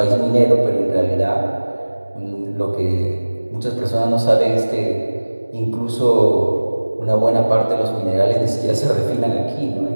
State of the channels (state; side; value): inverted; both; correlation -1.00